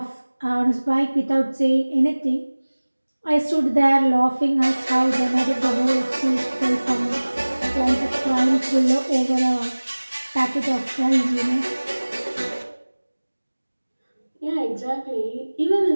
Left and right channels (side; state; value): both; inverted; correlation -1.00